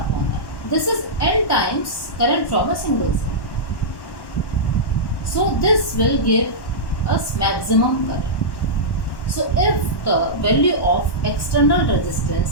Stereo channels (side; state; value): right; late; 1.1 ms